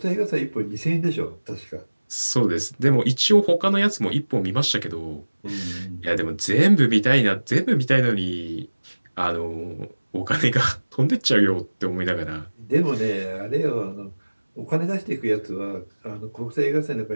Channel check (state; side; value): inverted; both; correlation -1.00